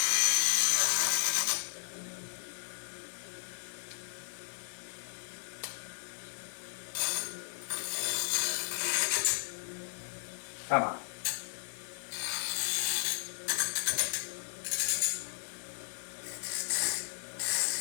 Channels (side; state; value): right; silent; digital silence